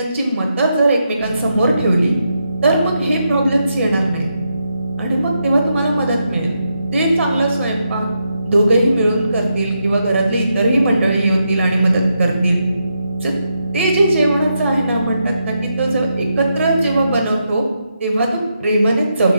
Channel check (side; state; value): both; inverted; correlation -0.83